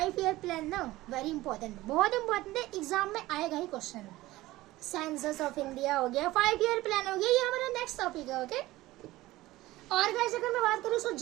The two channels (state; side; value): quieter; left; 17.7 dB